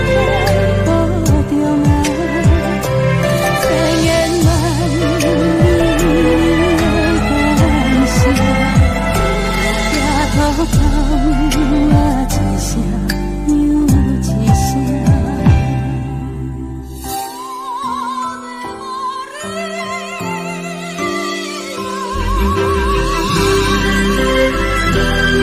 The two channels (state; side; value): identical; both; correlation 1.00